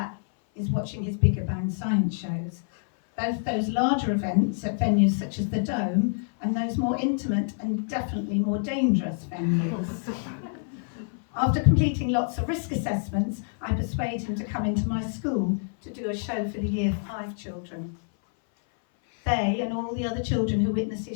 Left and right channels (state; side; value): silent; right; 57 dB below the other